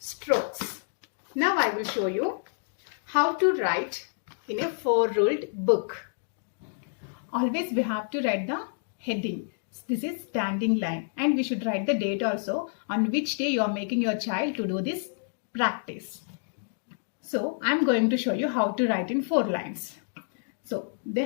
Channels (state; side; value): silent; right; digital silence